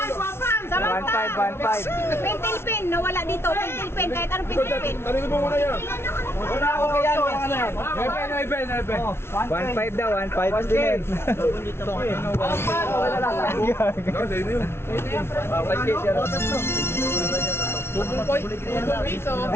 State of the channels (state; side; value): late; right; 0.12 ms